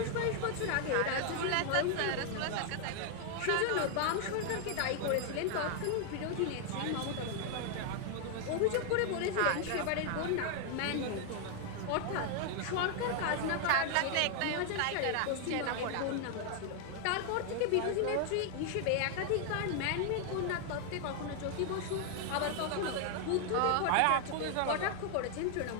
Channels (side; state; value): both; different; correlation 0.00